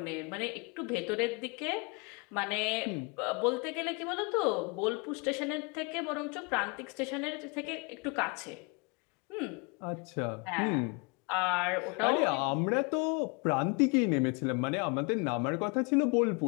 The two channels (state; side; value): quieter; right; 31.2 dB